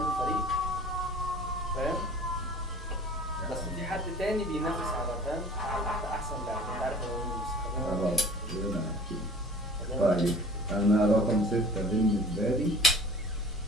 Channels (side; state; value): both; normal; correlation 0.47